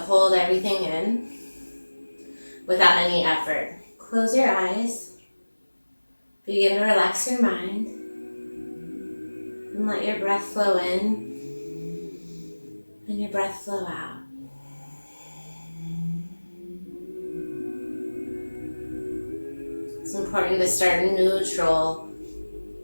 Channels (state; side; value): inverted; both; correlation -1.00